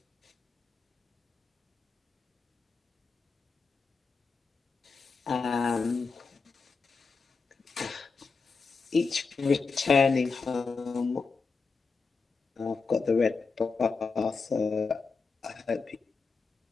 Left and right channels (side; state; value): right; quieter; 4.6 dB